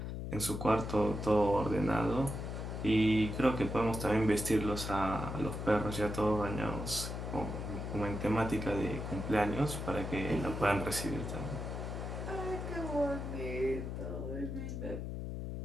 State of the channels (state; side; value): noise; left; hum, 5 dB below the sound